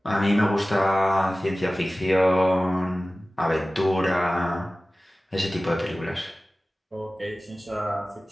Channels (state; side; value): normal; both; correlation 0.97